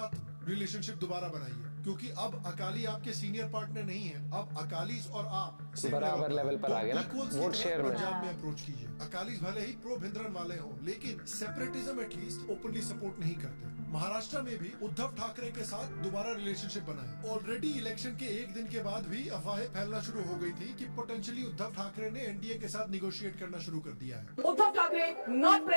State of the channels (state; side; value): inverted; both; correlation -1.00